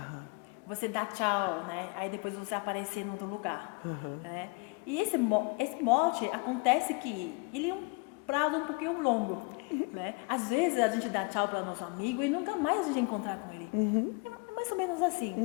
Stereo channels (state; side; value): quieter; right; 29.1 dB